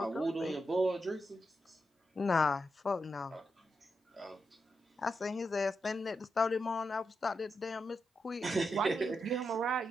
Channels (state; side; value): normal; both; correlation 0.86